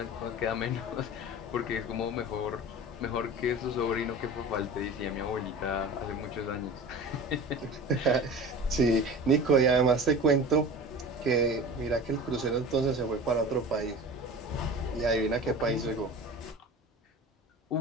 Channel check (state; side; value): normal; both; correlation 0.36